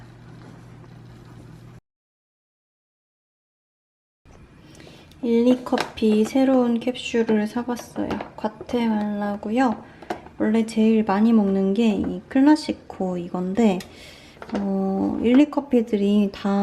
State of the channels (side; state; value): both; identical; correlation 1.00